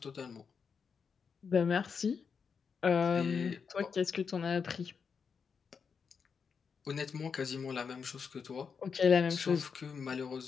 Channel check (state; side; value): quieter; right; 6.0 dB